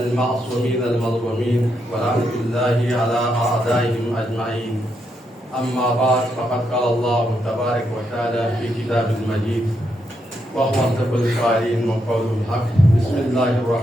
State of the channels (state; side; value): normal; both; correlation 0.80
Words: المظلومين ورحمة الله على أعدائهم أجمعين. أما بعد فقد قال الله تبارك وتعالى في كتاب المجيد وهو أصدق القائلين وقول الحق. بسم الله